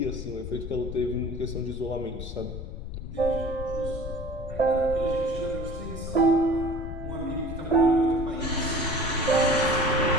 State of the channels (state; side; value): noise; left; rumble, 8 dB below the sound